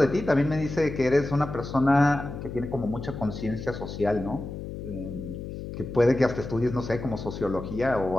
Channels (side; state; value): left; noise; hum, 8 dB below the sound